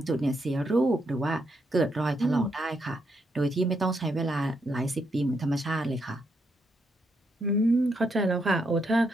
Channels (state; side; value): normal; both; correlation 0.79